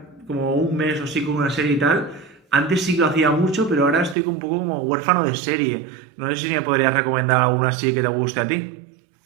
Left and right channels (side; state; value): left; drops out; at 4.2 s